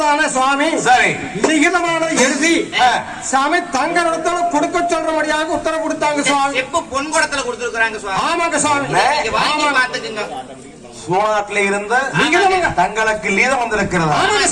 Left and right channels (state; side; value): identical; both; correlation 1.00